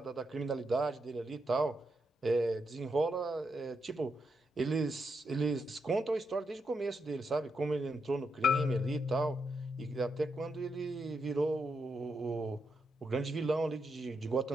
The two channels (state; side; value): normal; both; correlation 0.83